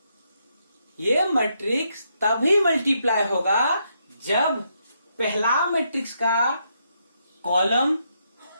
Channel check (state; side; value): inverted; both; correlation -0.78